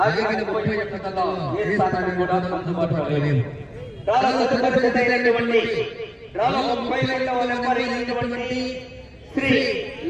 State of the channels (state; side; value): identical; both; correlation 1.00